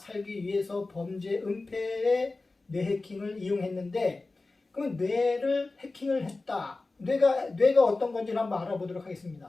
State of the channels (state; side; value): quieter; right; 3.4 dB